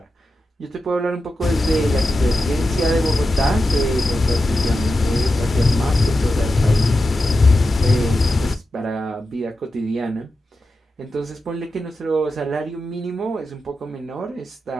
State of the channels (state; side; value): normal; both; correlation 0.90